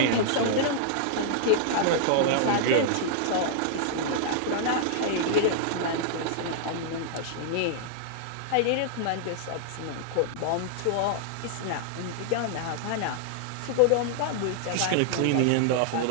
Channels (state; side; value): different; both; correlation -0.01